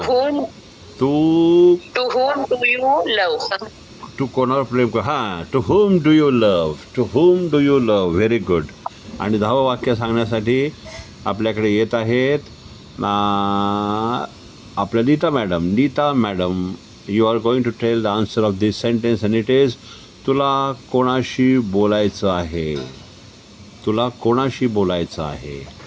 टू तू होम डू यू लव्ह. तू कोणावर प्रेम कर हां to whom do you love very good. आणि 10वं वाक्य सांगण्यासाठी आपल्याकडे येत आहेत आपल्या Neeta madam you are going to tell the answer of this sentence and it is तुला कोणाशी बोलायचं आहे.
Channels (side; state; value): both; identical; correlation 1.00